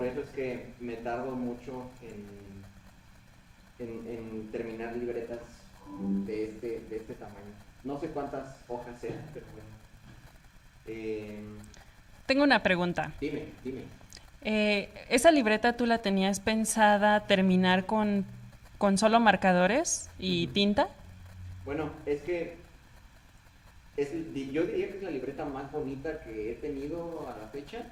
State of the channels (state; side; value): identical; both; correlation 1.00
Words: eso es que me tardo mucho en terminar libretas de este tamaño. No sé cuántas hojas sean, pero bueno. Tengo una pregunta. Dime. ¿Esa libreta tú la tenías pensada terminar con solo marcadores y tinta? Bueno, es que yo diría que es la libreta más bonita que he tenido a la fecha,